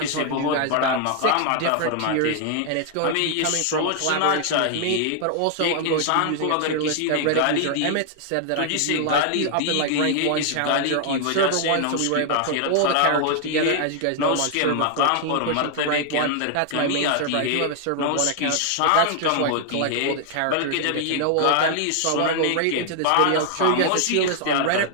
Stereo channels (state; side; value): different; both; correlation 0.00